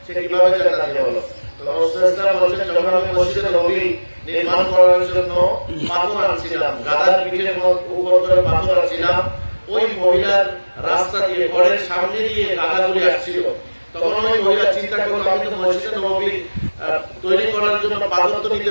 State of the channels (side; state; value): both; inverted; correlation -1.00